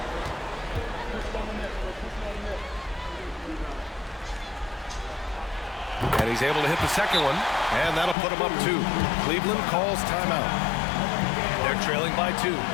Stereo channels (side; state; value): right; drops out; at 8.2 s